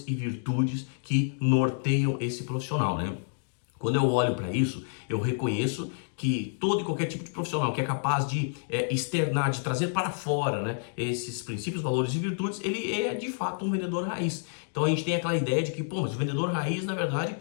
e virtudes que norteiam esse profissional, né? Quando eu olho para isso, eu reconheço que todo e qualquer tipo de profissional que é capaz de externar, de trazer para fora, né, esses princípios, valores e virtudes, ele é de fato um vendedor raiz. Então a gente tem aquela ideia de que, pô, mas o vendedor raiz, na verdade,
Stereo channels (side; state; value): right; silent; digital silence